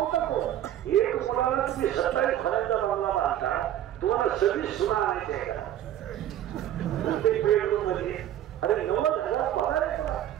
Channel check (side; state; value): left; quieter; 11.9 dB